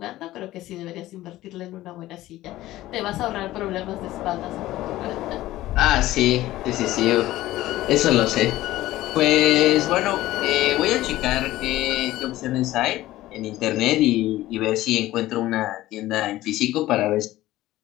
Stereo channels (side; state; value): right; quieter; 15.9 dB